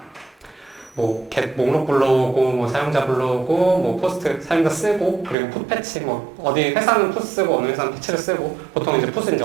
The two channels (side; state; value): left; drops out; at 5.4 s